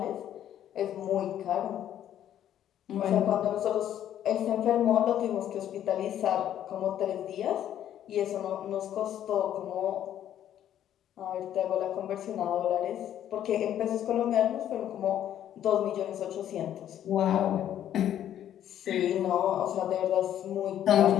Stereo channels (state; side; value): quieter; right; 10.9 dB